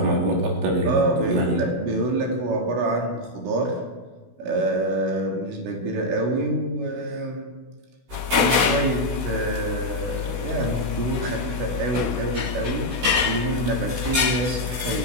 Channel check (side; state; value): left; late; 16 ms